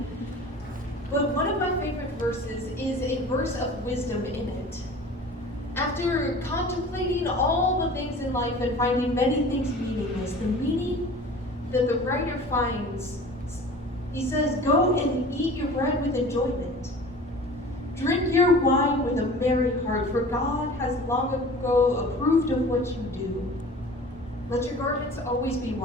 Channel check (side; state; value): both; normal; correlation 0.41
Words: But one of my favorite verses is a verse of wisdom in it. After contemplating all the things in life and finding many things meaningless, the meaning that the writer finds, he says, go and eat your bread with enjoyment. Drink your wine with a merry heart, for God has long ago approved of what you do. Let your garments always be